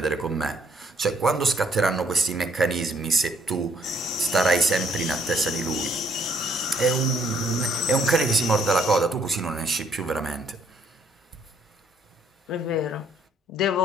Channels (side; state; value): both; normal; correlation 0.66